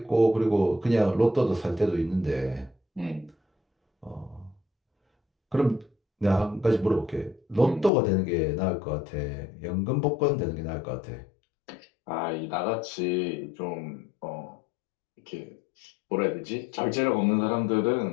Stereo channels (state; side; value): drops out; right; at 7.9 s